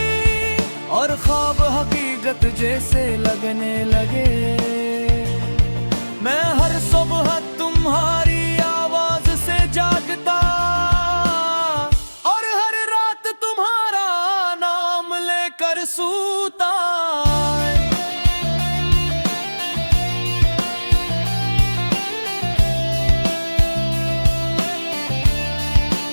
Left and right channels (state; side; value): inverted; both; correlation -1.00